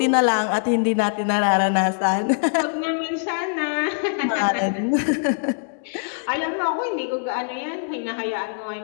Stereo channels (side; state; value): right; silent; digital silence